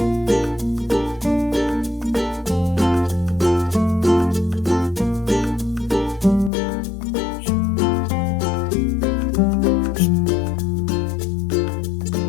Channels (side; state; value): right; drops out; at 6.5 s